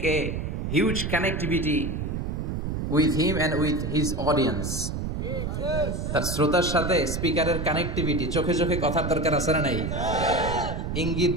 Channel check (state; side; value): noise; right; rumble, 3 dB below the sound